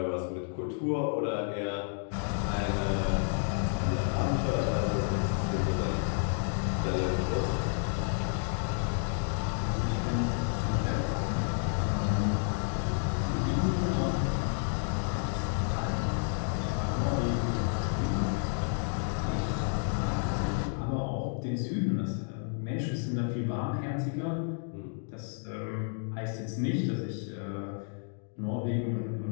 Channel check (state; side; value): silent; right; 57 dB below the other